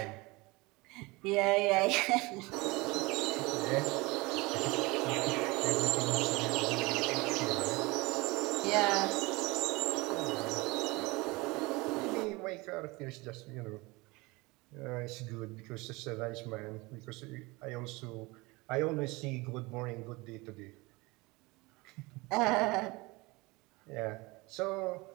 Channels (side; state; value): left; quieter; 23.8 dB